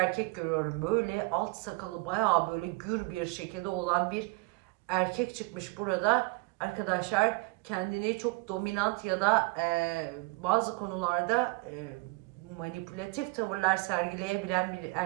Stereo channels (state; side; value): quieter; left; 25.9 dB